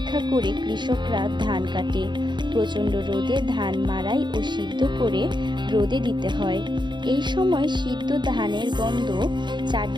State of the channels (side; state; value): left; late; 0.22 ms